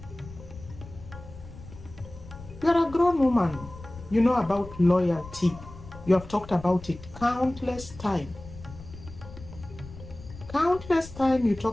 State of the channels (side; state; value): left; noise; rumble, 16 dB below the sound